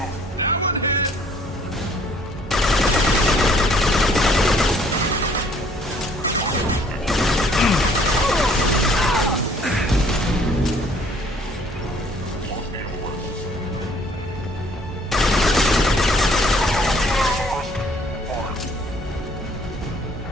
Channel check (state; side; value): normal; both; correlation 0.59